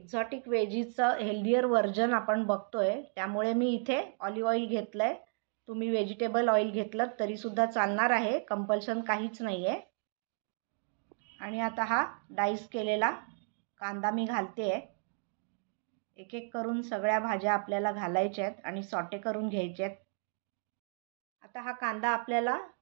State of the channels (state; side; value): silent; left; 56 dB below the other